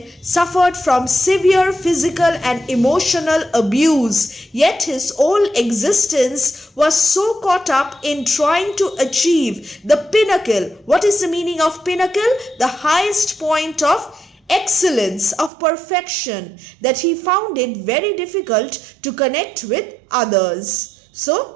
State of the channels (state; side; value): drops out; left; at 15.5 s